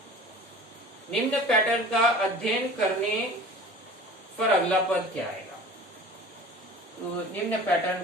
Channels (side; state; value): both; normal; correlation 0.42